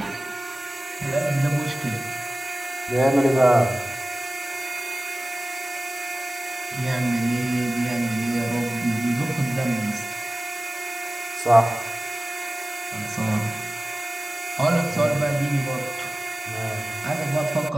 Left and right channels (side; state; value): both; normal; correlation 0.97